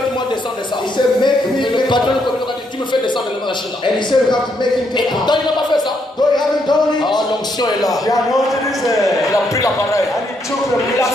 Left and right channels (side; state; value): both; normal; correlation 0.75